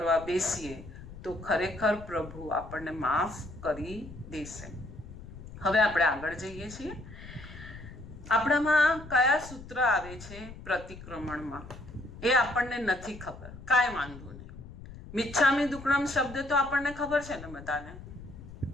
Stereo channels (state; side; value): noise; left; rumble, 15 dB below the sound